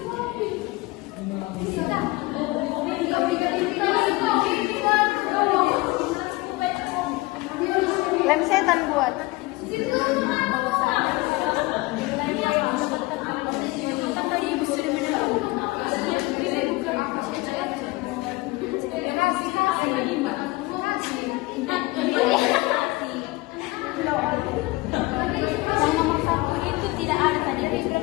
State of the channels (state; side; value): quieter; right; 22.0 dB